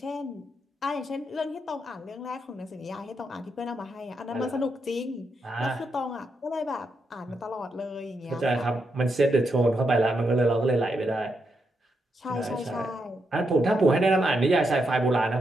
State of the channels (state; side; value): normal; both; correlation 0.82